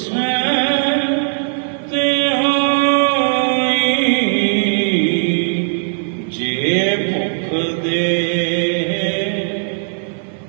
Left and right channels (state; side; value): silent; left; digital silence